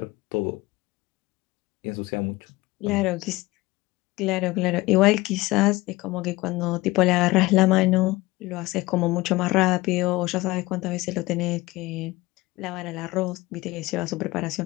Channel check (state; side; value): quieter; right; 20.2 dB